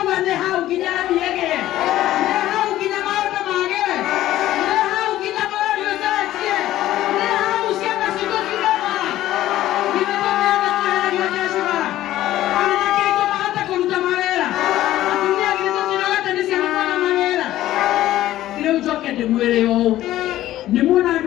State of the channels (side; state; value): right; quieter; 14.2 dB